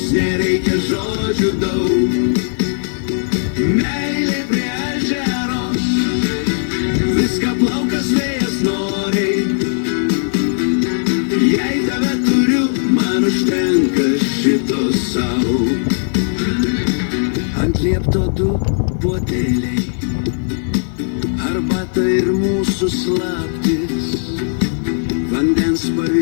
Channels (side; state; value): right; silent; 68 dB below the other